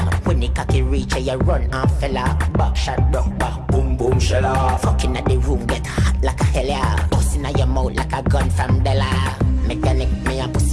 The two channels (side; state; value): both; identical; correlation 1.00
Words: When the cocky reach, you run and fella. Back shot, broke back, boom boom shella. Fucking at the room, get hot like a hell yeah. Busting at your mouth like a gun from Della. Mechanic, me a